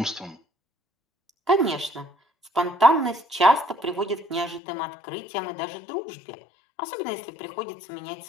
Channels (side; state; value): right; drops out; at 4.6 s